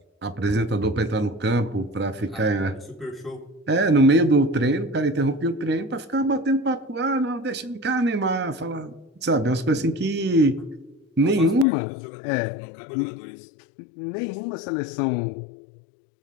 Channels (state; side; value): drops out; right; at 11.7 s